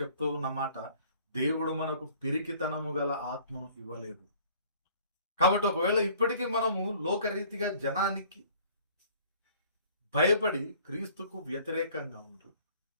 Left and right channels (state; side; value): inverted; both; correlation -0.54